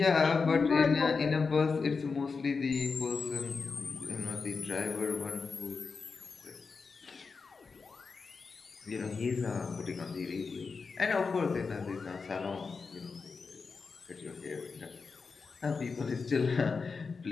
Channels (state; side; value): quieter; right; 4.8 dB